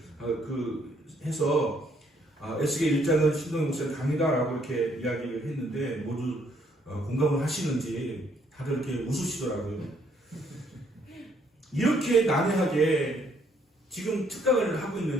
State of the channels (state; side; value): normal; both; correlation 0.68